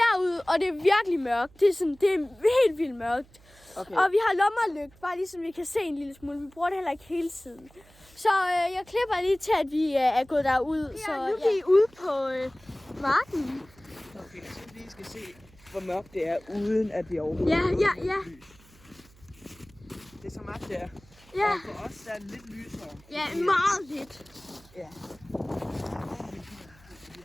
derud, og det er virkelig mørkt. Det er helt vildt mørkt. Okay. Og vi har lommerlygt, bare ligesom vi kan se en lille smule. Vi bruger det heller ikke hele tiden. Så jeg klipper lige til, at vi er gået derud. Ja, så nu er vi ude på marken. Okay, så vi skal se, hvor mørkt det er, uden at vi overhovedet Ja. Det er så mørkt, det er. Ja. Og for os der er det lidt lysere. Ja, meget lidt. Ja.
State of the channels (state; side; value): noise; right; hum, 26 dB below the sound